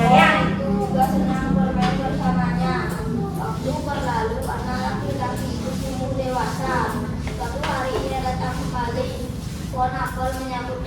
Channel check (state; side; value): identical; both; correlation 1.00